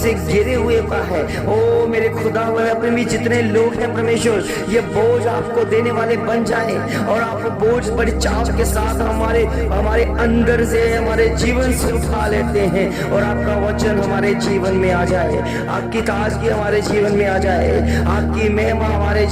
घिरे हुए का है। ओ मेरे खुदा अपने भी जितने लोग हैं परमेश्वर, ये बोझ आपको देने वाले बन जाए और आप बोझ बड़ी चाव के साथ हमारे अंदर से, हमारे जीवन से उठा लेते हैं और आपका वचन हमारे जीवन में आ जाए, आपकी ताजगी हमारे जीवन में आ जाए, आपकी महिमा हमारे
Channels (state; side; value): identical; both; correlation 1.00